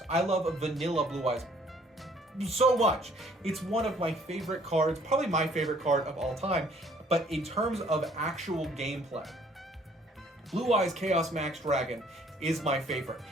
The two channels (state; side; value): normal; both; correlation 0.60